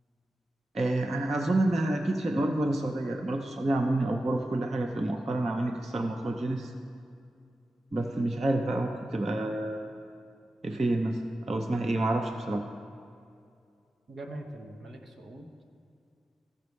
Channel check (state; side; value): normal; both; correlation 0.92